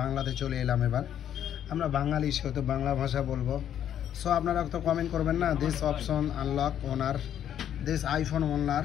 বাংলাতে চলে এলাম। এবার আমরা বাঙালি, সেহেতু বাংলা ভাষা বলবো। সো আপনারা তো কমেন্ট করবেন না, this option unlock owner, this iPhone owner,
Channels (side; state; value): right; quieter; 10.1 dB